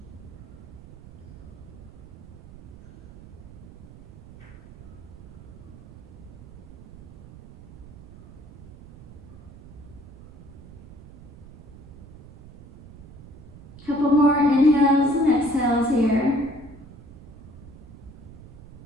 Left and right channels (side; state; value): right; noise; rumble, 18 dB below the sound